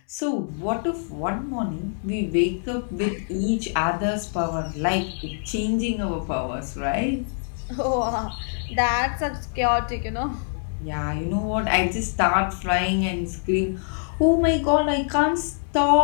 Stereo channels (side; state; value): right; silent; digital silence